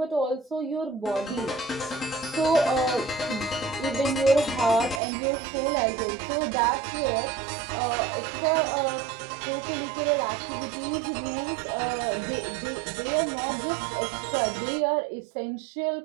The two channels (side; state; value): left; drops out; at 5.0 s